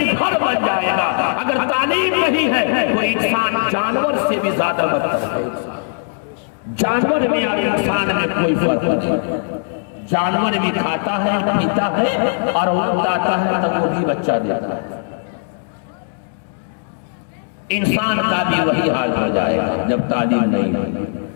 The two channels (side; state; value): right; silent; digital silence